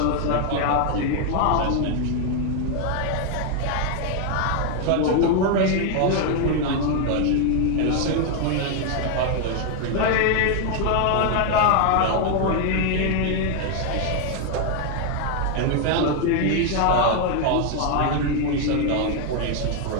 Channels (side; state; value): both; different; correlation 0.00